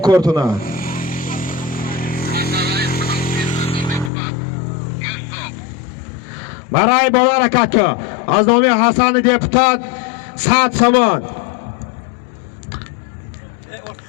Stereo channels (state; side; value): drops out; right; at 4.1 s